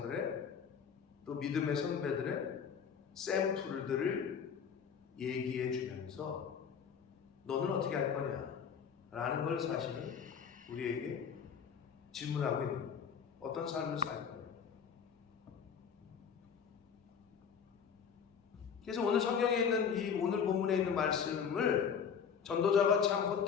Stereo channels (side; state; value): right; quieter; 7.0 dB